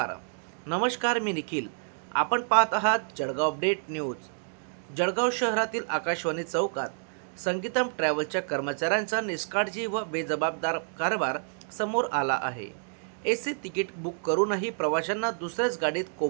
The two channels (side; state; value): left; silent; 59 dB below the other